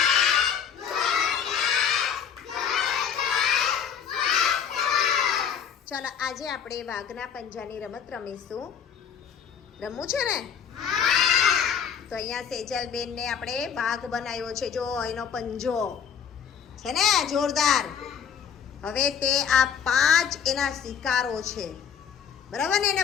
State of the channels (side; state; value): right; quieter; 7.7 dB